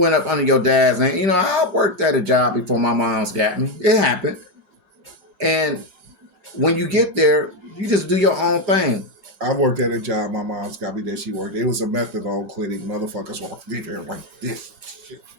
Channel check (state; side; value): late; left; 5.0 ms